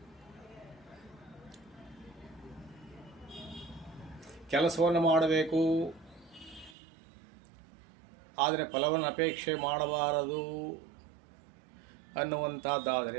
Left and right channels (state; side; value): drops out; left; at 6.8 s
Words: ಕೆಲಸವನ್ನು ಮಾಡಬೇಕು, ಆದರೆ ಫಲವನ್ನು ಅಪೇಕ್ಷೆ ಮಾಡಬಾರದು